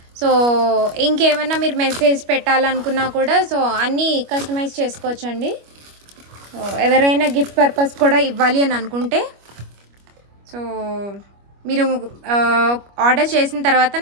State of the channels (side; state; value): left; late; 25 ms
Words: సో ఇంకేమైనా మీరు మెసేజ్ పెట్టాలనుకున్నా కూడా సో అన్నీ కస్టమైజ్ చేసుకోవచ్చండి. సో ఎవరైనా గిఫ్ట్ పర్పస్ కూడా ఇవ్వాలి అని అనుకుంటే సో మీరు ఆర్డర్ చేసిన తర్వాత